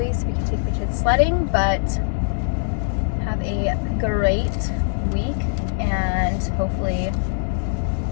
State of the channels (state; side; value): silent; right; digital silence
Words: so we can take the kids sledding. But have a great week, and hopefully